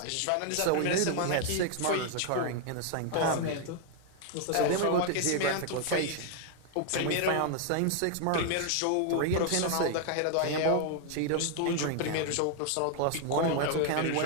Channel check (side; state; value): both; different; correlation 0.00